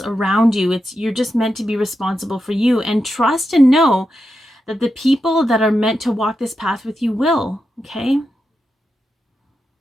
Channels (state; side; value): normal; both; correlation 0.88